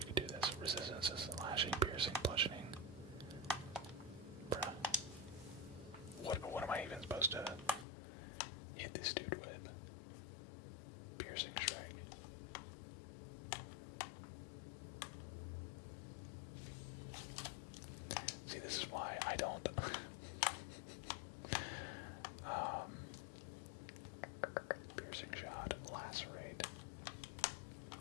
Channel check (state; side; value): drops out; right; at 7.9 s